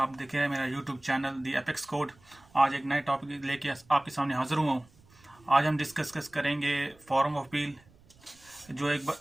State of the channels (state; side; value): noise; right; rumble, 28 dB below the sound